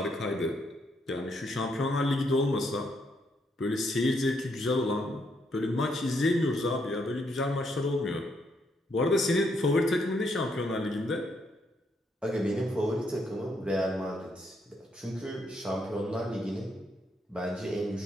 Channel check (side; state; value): both; normal; correlation 0.75